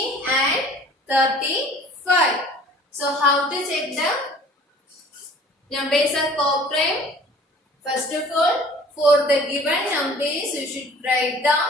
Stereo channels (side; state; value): both; normal; correlation 0.49